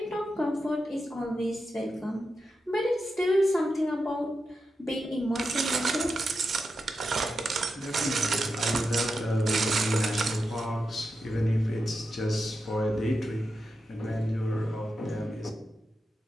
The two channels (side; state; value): both; normal; correlation 0.88